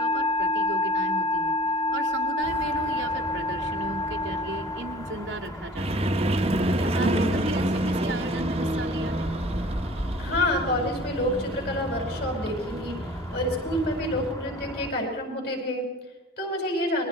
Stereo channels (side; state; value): both; normal; correlation 0.46